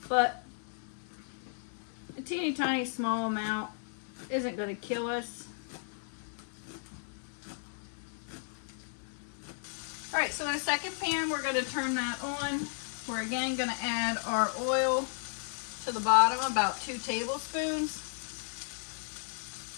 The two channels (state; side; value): silent; right; digital silence